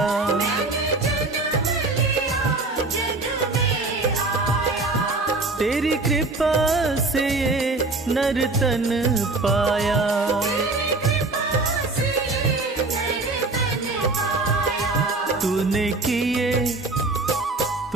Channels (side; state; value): left; quieter; 3.3 dB